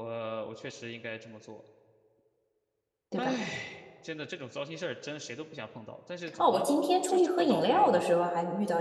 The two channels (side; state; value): both; identical; correlation 1.00